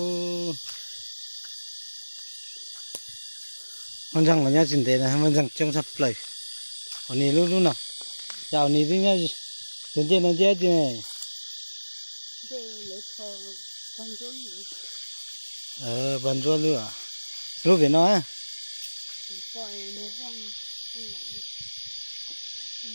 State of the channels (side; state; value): both; inverted; correlation -1.00